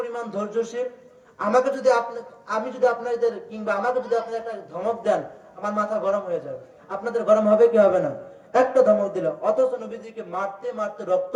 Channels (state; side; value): identical; both; correlation 1.00